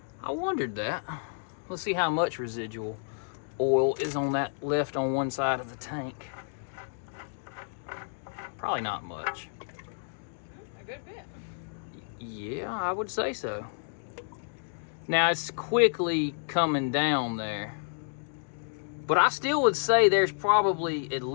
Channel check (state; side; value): silent; right; digital silence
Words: I wondered that. Let's see how much residual oil is on that left on one side of the tank. Probably not much. A good bit. Yeah, I would say so. Now it's quickly coming down there, but I still would say there's probably at